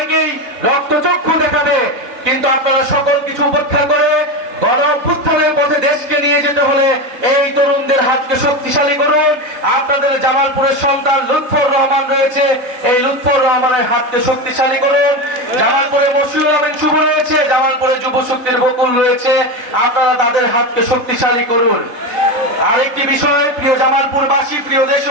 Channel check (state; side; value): late; left; 3.3 ms